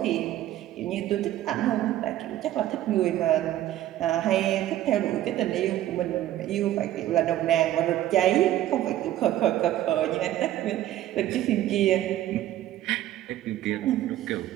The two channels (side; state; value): left; quieter; 13.4 dB